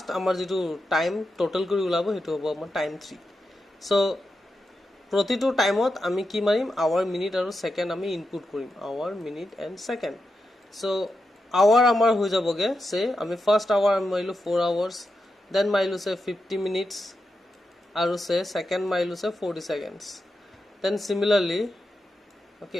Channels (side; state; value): both; normal; correlation 0.88